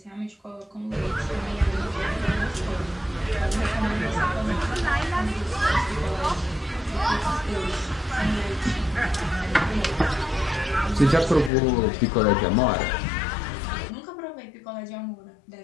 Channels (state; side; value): drops out; right; at 11.5 s